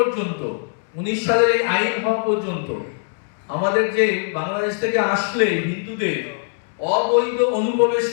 19 সালের এই আইন হওয়া পর্যন্ত আমাদের যে বাংলাদেশ থেকে আসলে হিন্দুদের অবৈধ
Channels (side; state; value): right; silent; digital silence